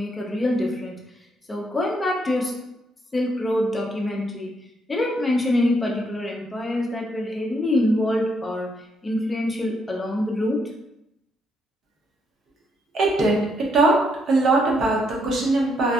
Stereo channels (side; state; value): both; normal; correlation 0.75